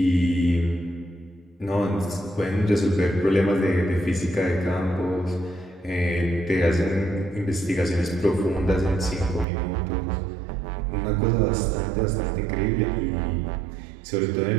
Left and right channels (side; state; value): left; drops out; at 9.5 s